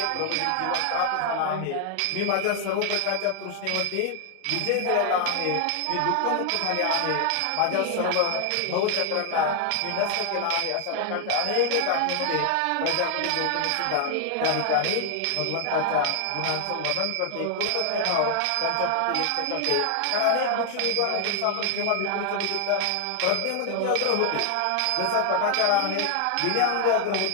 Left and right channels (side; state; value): both; different; correlation 0.00